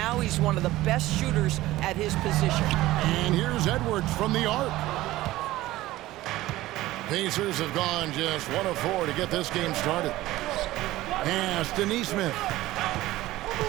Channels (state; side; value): quieter; left; 16.8 dB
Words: he's one of the best shooters at his position. And here's Edwards from the arc. Pacers have gone just 1 of 4 to get this game started. Pass to Nesmith.